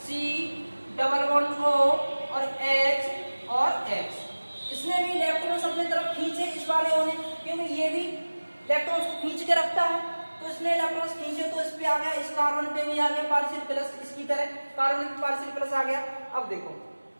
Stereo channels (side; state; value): both; inverted; correlation -1.00